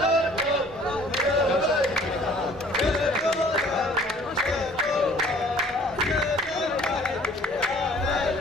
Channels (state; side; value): normal; both; correlation 0.53